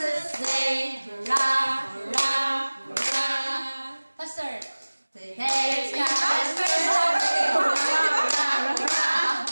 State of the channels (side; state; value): both; inverted; correlation -1.00